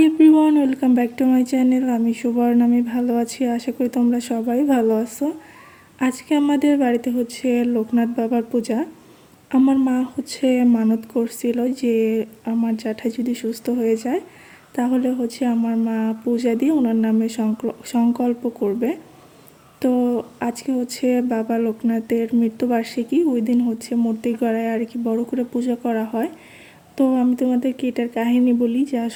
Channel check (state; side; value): identical; both; correlation 1.00